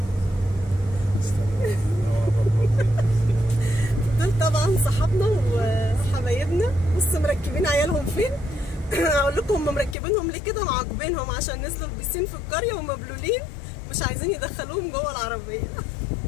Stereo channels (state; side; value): drops out; right; at 10.0 s